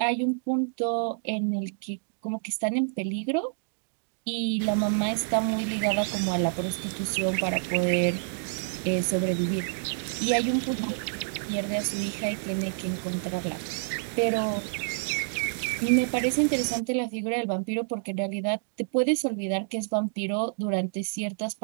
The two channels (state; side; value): silent; left; digital silence